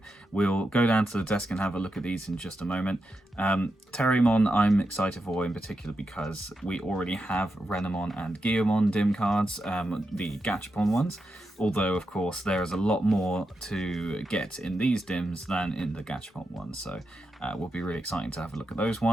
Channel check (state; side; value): normal; both; correlation 0.87